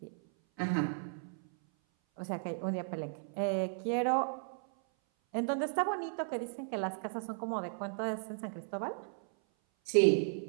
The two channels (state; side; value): silent; left; 54 dB below the other